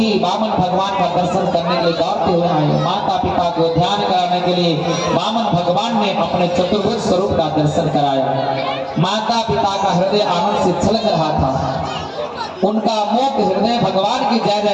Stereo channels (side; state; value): both; identical; correlation 1.00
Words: वामन भगवान का दर्शन करने के लिए दौड़ते हुए आए। माता पिता को ध्यान कराने के लिए वामन भगवान ने अपने चतुर्भुज स्वरूप का दर्शन कराया। माता पिता का हृदय आनंद से छलक रहा था, उनका मुक्त हृदय भगवान की जय